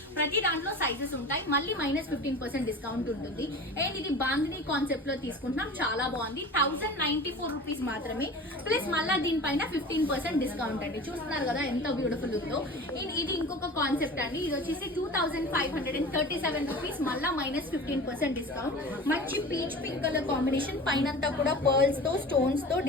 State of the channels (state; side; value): normal; both; correlation 0.36